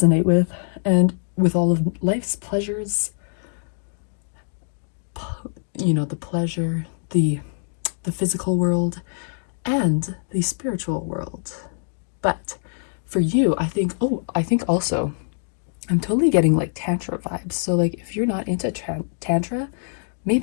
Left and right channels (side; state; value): right; silent; digital silence